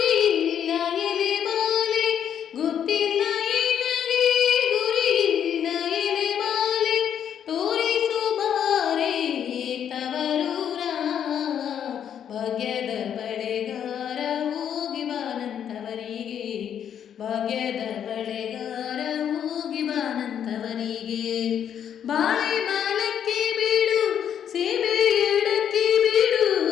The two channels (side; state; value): right; quieter; 9.0 dB